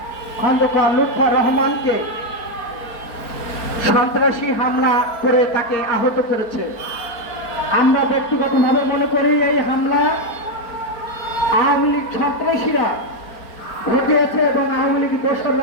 খন্দকার লুৎফর রহমানকে সন্ত্রাসী হামলা করে তাকে আহত করেছে। আমরা ব্যক্তিগতভাবে মনে করি এই হামলা আওয়ামী লীগ সন্ত্রাসীরা ঘটিয়েছে এবং আওয়ামী লীগ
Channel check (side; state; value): right; late; 4.4 ms